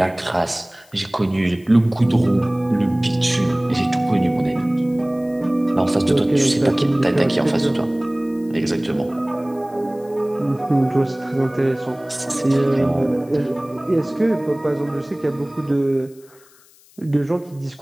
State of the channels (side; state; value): left; noise; hiss, 28 dB below the sound